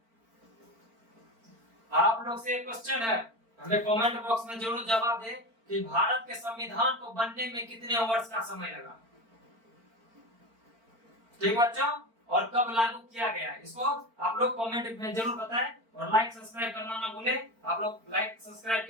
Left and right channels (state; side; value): late; left; 4.4 ms